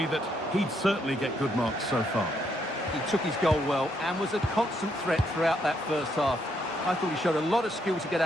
that he'd certainly get good marks so far? He took his goal well and was a constant threat throughout that first half. I thought he showed a lot of skill to get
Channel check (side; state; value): both; normal; correlation 0.75